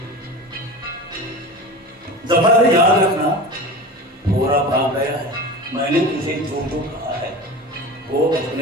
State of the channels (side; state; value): both; normal; correlation 0.31